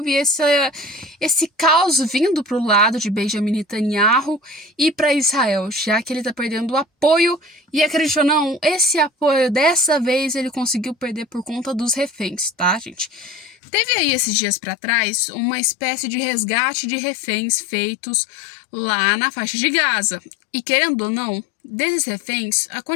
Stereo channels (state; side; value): drops out; right; at 13.6 s